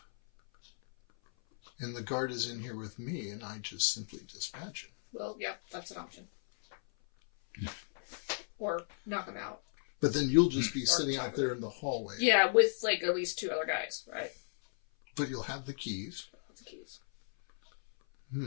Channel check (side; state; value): right; silent; 55 dB below the other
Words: and the guard is in here with me and I just simply dispatch him. Well, yeah, that's an option. Or knock him out. But then you'll just be sitting out there in the hallway. Yeah, with like at least 2 other guys, right? But you'll have the keys. That's the keys.